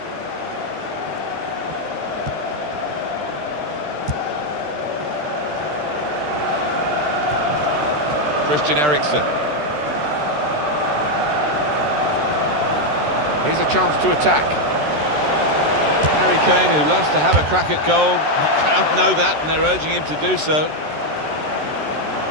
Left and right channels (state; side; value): late; left; 13 ms